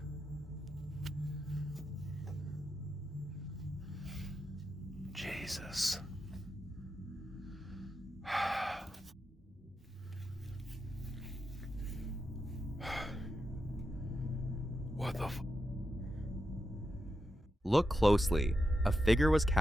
Jesus. What the Look closely. A figure was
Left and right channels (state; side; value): normal; both; correlation 0.87